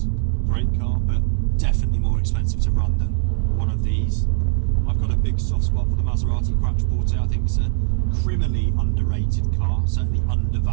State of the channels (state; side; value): silent; left; 65 dB below the other